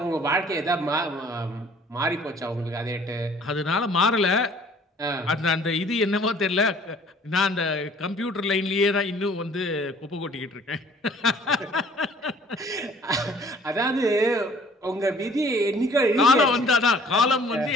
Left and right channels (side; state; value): both; normal; correlation 0.54